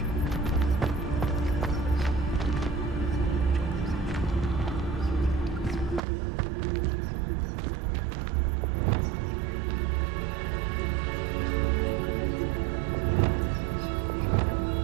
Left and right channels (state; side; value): drops out; left; at 6.0 s